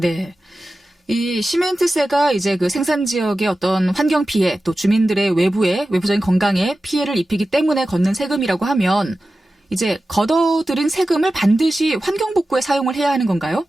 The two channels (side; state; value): both; normal; correlation 0.94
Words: 이 시멘트세가 이제 그 생산 지역의 어떤 환경 피해 또 주민들의 외부적인 건강에 피해를 입히기 때문에 걷는 세금이라고 하면 이제 걷어들인 세금을 반드시 환경복구에 사용을 해야 하는 건가요?